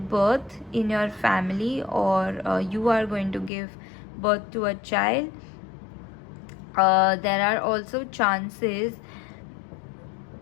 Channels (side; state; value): right; drops out; at 3.5 s